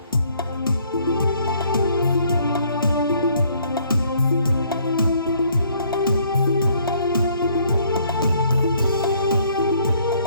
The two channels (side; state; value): both; inverted; correlation -0.63